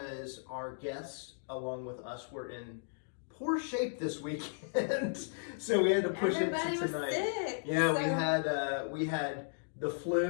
our guests, along with us, were in poor shape this weekend, so we had to push Everybody it to tonight. Was sick, Yeah, so... we had the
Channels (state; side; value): silent; right; digital silence